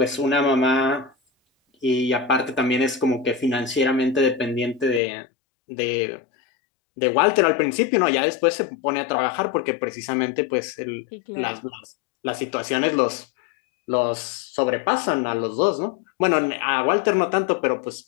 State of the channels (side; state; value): right; drops out; at 5.0 s